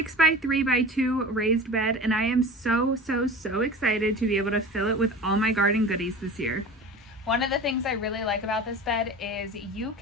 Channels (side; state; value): both; normal; correlation 0.35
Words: raised bed and I am so excited to be able to fill it with all my garden goodies this year. One of the things I really like about this bed is you